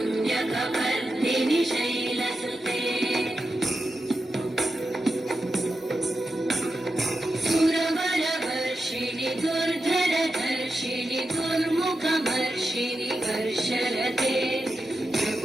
शैलसुते सुरवरवर्षिणि दुर्धरधर्षिणि दुर्मुखमर्षिणि वर्षरते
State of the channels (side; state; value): both; normal; correlation 0.89